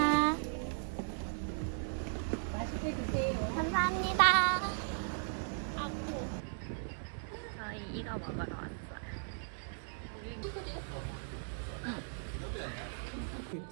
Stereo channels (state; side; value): silent; left; digital silence